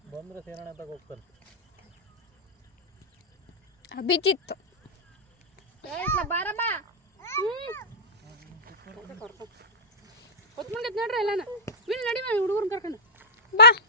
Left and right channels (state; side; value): normal; both; correlation -0.13